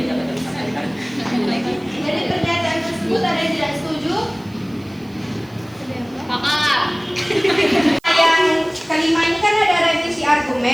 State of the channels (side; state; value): right; noise; hiss, 29 dB below the sound